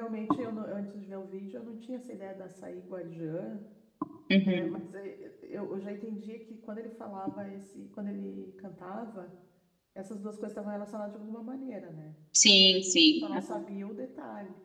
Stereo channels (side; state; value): both; identical; correlation 1.00